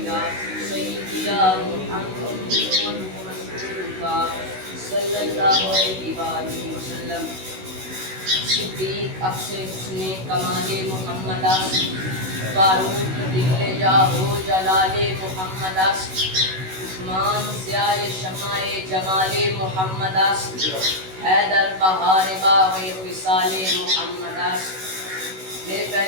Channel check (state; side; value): late; left; 16 ms